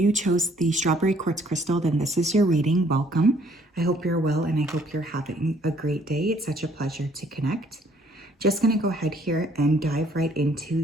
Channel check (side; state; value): both; normal; correlation 0.62